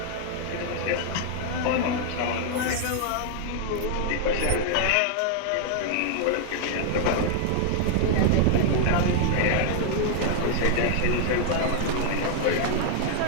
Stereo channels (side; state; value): both; different; correlation 0.00